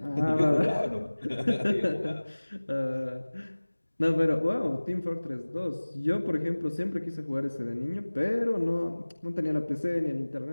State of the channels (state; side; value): inverted; both; correlation -1.00